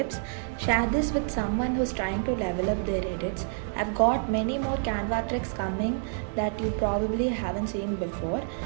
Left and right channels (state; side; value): silent; left; digital silence